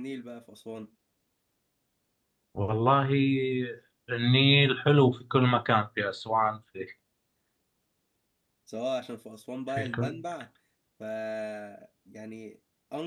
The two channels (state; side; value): identical; both; correlation 1.00